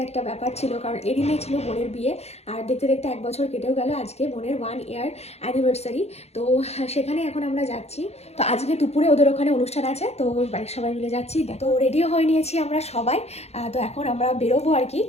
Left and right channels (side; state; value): right; late; 0.31 ms